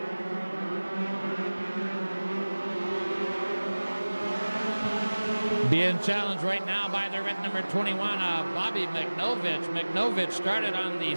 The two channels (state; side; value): inverted; both; correlation -1.00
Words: Being challenged right now by the red number 21, Bobby McNovich. McNovich started on the